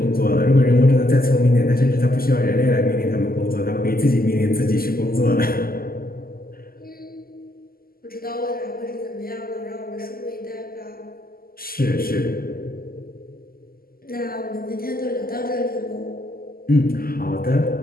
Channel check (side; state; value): right; late; 0.42 ms